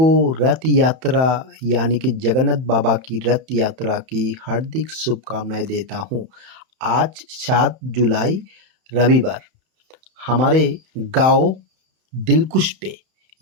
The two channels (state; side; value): late; left; 31 ms